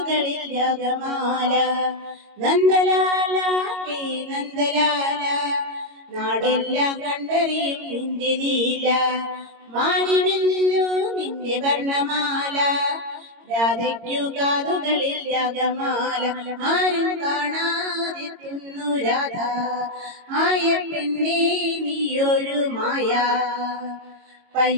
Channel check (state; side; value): late; left; 22 ms